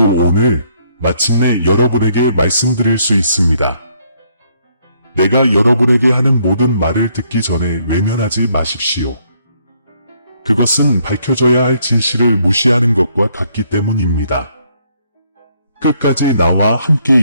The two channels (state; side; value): inverted; both; correlation -0.69